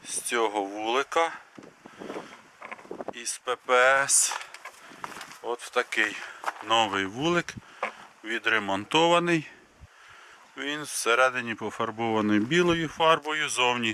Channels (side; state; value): both; identical; correlation 1.00